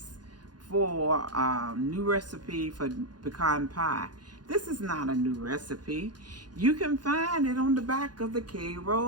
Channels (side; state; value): left; late; 0.70 ms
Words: for a new recipe for pecan pie. This is not a new recipe. You can find it on the back of the